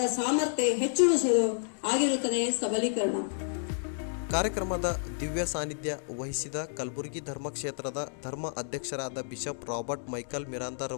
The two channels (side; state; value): right; silent; digital silence